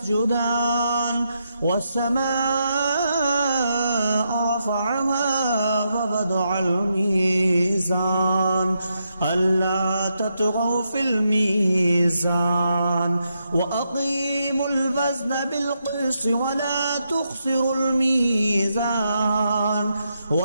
والسماء رفعها ووضع الميزان ألا تطغوا في الميزان وأقيموا الوزن بالقسط ولا تخسروا الميزان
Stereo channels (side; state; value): both; inverted; correlation -0.82